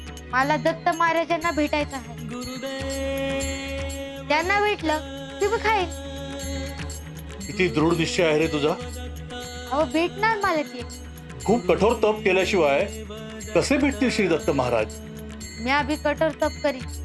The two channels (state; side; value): identical; both; correlation 1.00